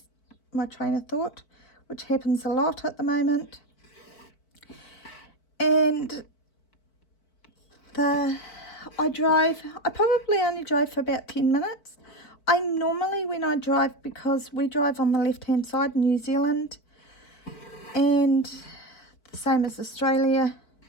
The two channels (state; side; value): late; right; 4.5 ms